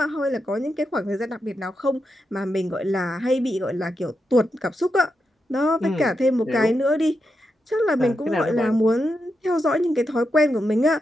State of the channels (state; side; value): normal; both; correlation 0.86